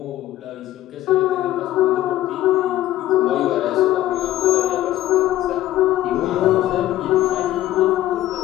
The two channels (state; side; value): quieter; right; 14.2 dB